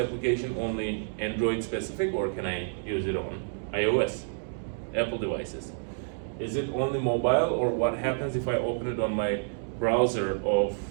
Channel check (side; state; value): left; silent; digital silence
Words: only Android specific, or can I use it on iOS, Apple devices? Is it only mobile, or what happens if I open it on my browser of